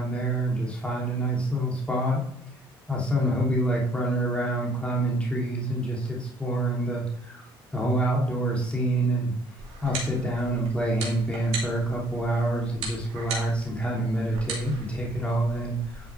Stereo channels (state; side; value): normal; both; correlation 0.61